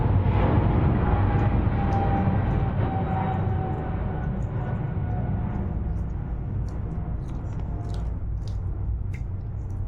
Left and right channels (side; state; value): both; identical; correlation 1.00